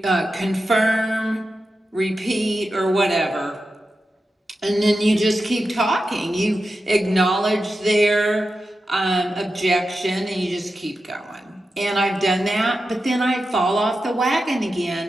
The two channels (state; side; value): normal; both; correlation 0.91